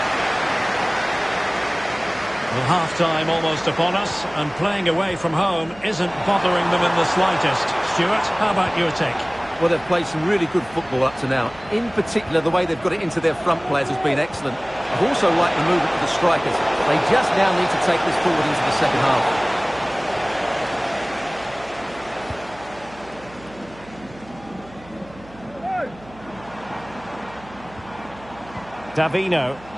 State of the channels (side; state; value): right; noise; hum, 22 dB below the sound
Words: Well, half-time almost upon us, and playing away from home isn't bothering them in the slightest. Stuart, how about your take? Well, they've played some really good football up to now. In particular, the way they've got it into their front players has been excellent. I've also liked the movement of the strikers. They just now need to take this forward into the second half. Davino.